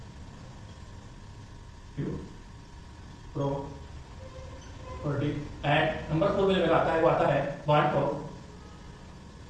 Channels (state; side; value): identical; both; correlation 1.00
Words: Property and number 4 में मेरा आता है वो आता है वांट ऑफ